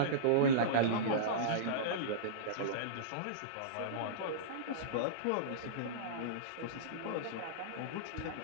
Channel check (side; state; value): both; different; correlation -0.05